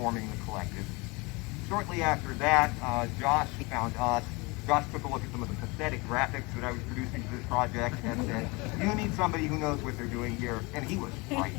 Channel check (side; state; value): right; quieter; 26.1 dB